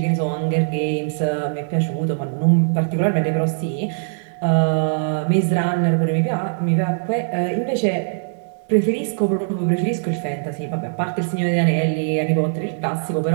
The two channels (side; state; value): left; silent; digital silence